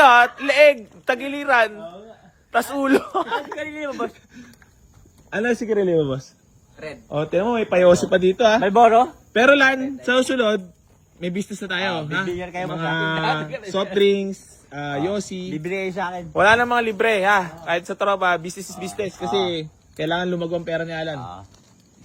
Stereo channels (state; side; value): identical; both; correlation 1.00